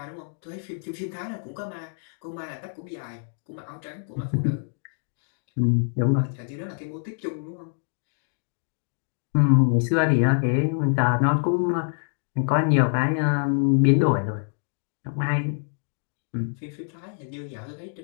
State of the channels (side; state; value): right; silent; digital silence